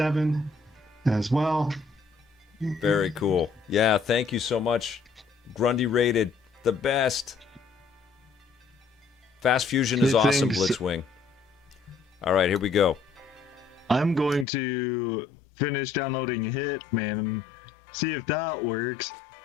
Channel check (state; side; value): drops out; right; at 14.5 s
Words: as well. Very cool. Yeah, thank you so much. Grundy rated the best. Fast Fusion is awesome, Blitzwing. All right, here we go. I'm going to finish downloading Hitman and see if that works.